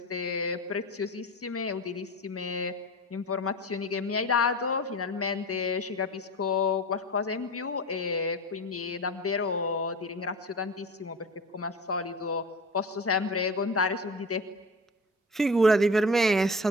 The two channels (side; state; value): both; normal; correlation 0.33